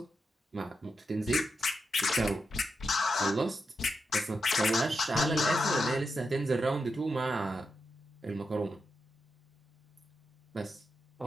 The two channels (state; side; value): normal; both; correlation 0.86